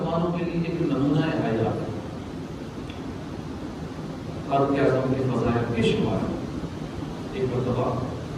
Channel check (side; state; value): both; identical; correlation 1.00